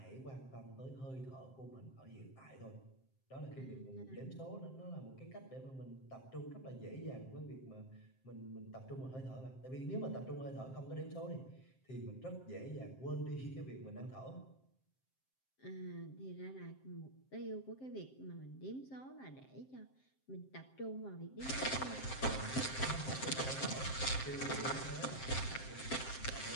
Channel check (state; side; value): late; right; 7.6 ms